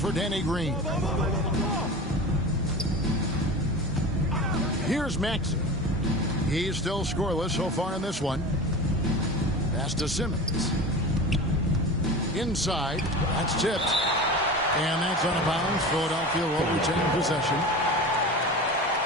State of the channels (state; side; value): normal; both; correlation 0.31